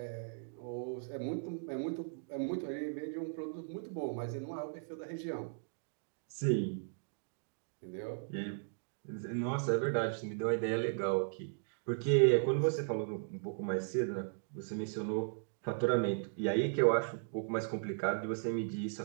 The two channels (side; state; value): left; silent; digital silence